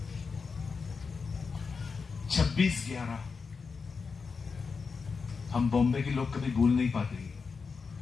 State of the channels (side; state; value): right; quieter; 5.1 dB